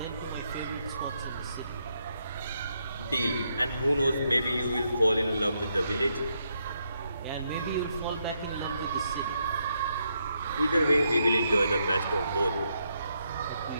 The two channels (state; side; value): inverted; both; correlation -0.79